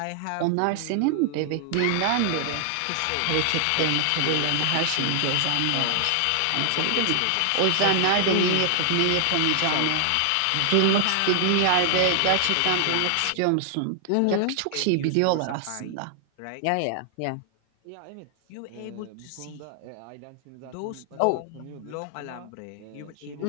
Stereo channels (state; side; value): different; both; correlation 0.00